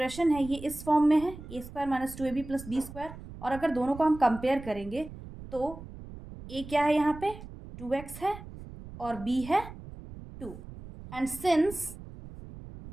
है ये इस फॉर्म में है a square minus 2ab plus b square, और अगर दोनों को हम कंपेयर करेंगे तो a क्या है यहाँ पे? 2x है और b है 2, and since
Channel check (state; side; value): noise; right; rumble, 14 dB below the sound